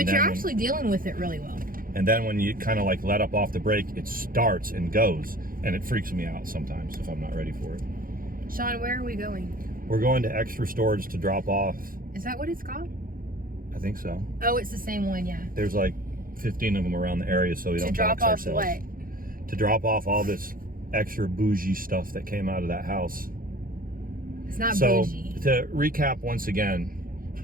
you're actually dealing with it really well. And then when you kind of like let up off the brake, it starts and goes, and it freaks me out sometimes if I'm not ready for it. Sean, where are we going? We're going to extra storage to drop off. Is that what it's called? I think so. Oh, it's the same one, yeah. There's like 15 of them around the area, so we don't drop dox off ourselves. what? To drop off all this extra bougie stuff that came out of that house. It's not bougie. So to recap once again,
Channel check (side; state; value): left; late; 0.41 ms